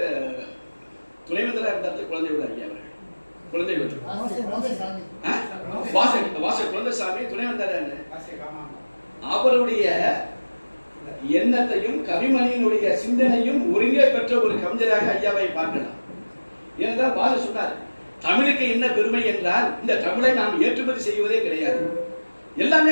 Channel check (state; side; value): inverted; both; correlation -1.00